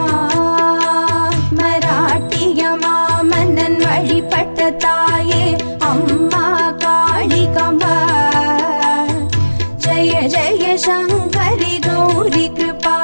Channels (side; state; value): both; inverted; correlation -1.00